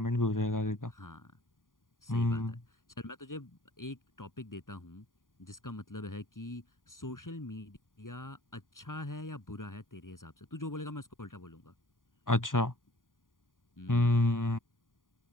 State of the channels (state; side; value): late; right; 0.89 ms